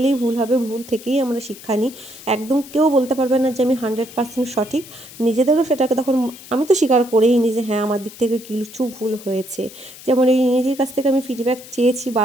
ভুল হবে, ভুল থেকেই আমরা শিক্ষা নিই। একদম কেউ বলতে পারবে না যে আমি 100% সঠিক। নিজেদেরও সেটাকে তখন আমি তো স্বীকার করেই নিই যে হ্যাঁ, আমার দিক থেকে কিছু ভুল হয়েছে। যেমন এই দিদির কাছ থেকে আমি ফিডব্যাক চেয়েছি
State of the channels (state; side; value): noise; left; hiss, 17 dB below the sound